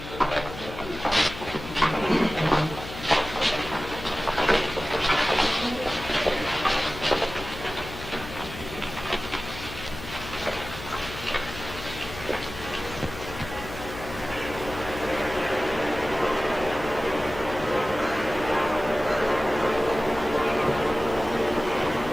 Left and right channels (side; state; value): left; noise; hum, 12 dB below the sound